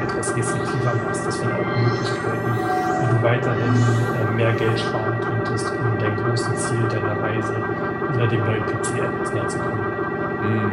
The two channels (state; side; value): identical; both; correlation 1.00